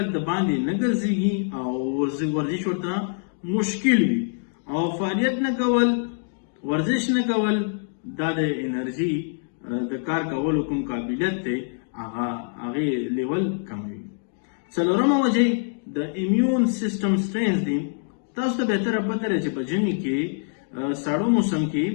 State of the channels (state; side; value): silent; right; digital silence